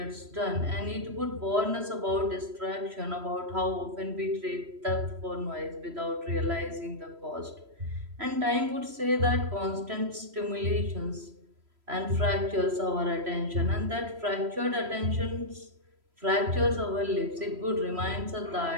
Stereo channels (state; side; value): late; left; 3.0 ms